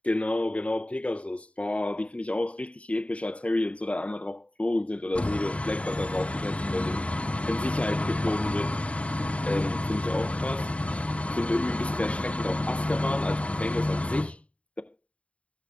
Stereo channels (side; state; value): right; late; 0.063 ms